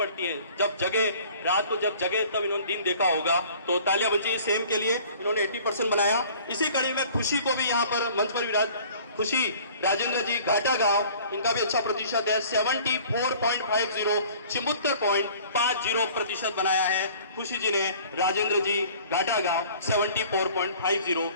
हैं। जब जगे, रात को जब जगे तब इन्होंने दिन देखा होगा, तो तालियां बन चाहिए सेम के लिए। इन्होंने 80% बनाया। इसी कड़ी में खुशी को भी यहाँ पर मंच पर विराज, खुशी राजेंद्र जी घाटा गांव, इनका भी अच्छा प्रतिशत है 74.50, 74.50% बनाया है खुशी जी ने। राजेंद्र जी घाटा गांव 74.50।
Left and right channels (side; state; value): both; inverted; correlation -0.50